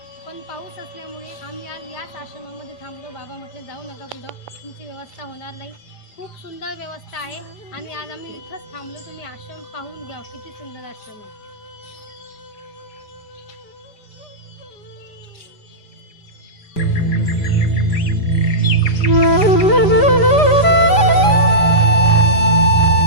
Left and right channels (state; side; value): late; right; 5.0 ms